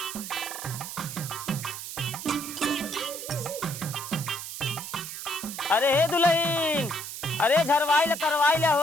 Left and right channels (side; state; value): right; noise; hiss, 8 dB below the sound